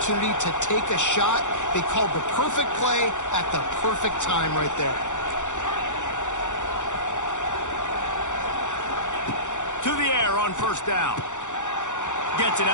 to take a shot. They called the perfect play at the perfect time right there. To the air on 1st down. Gets it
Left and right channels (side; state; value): right; late; 0.85 ms